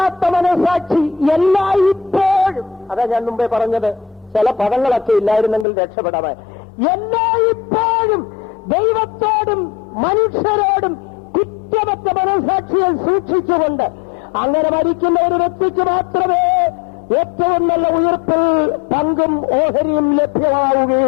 എല്ലായ്പ്പോഴും. അതാ ഞാൻ മുമ്പേ പറഞ്ഞത്, ചില പദങ്ങളൊക്കെ ഇല്ലായിരുന്നെങ്കിൽ രക്ഷപ്പെടാൻ. എല്ലായ്പ്പോഴും ദൈവത്തോടും മനുഷ്യരോടും കുറ്റമറ്റ മനസാക്ഷിയെ സൂക്ഷിച്ചുകൊണ്ട് അങ്ങനെ മരിക്കുന്ന ഒരു വ്യക്തിക്ക് മാത്രമേ ഏറ്റവും നല്ല ഉയർപ്പിൽ പങ്കും ഓഹരിയും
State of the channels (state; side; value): drops out; right; at 5.7 s